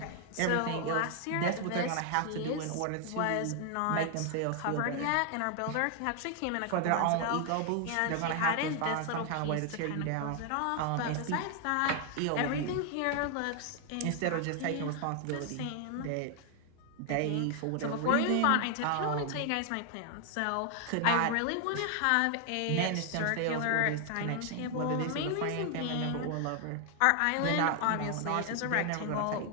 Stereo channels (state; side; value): different; both; correlation 0.00